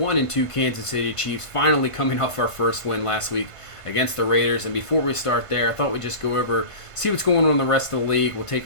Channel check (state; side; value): late; right; 1.5 ms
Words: Kansas City Chiefs, finally coming off our first win last week against the Raiders. And before we start there, I thought we'd just go over, see what's going on in the rest of the league. We'll